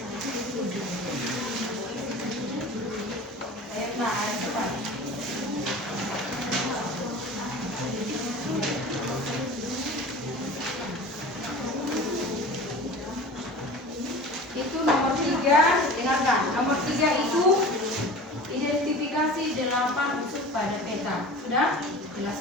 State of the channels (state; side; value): normal; both; correlation 0.38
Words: Itu nomor 3, dengarkan. Nomor 3 itu identifikasi 8 unsur pada peta. Sudah?